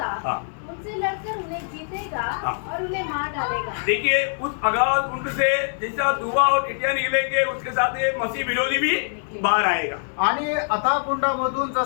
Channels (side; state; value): right; silent; digital silence